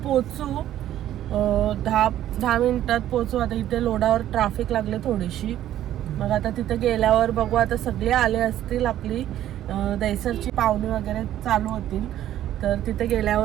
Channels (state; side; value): quieter; left; 12.3 dB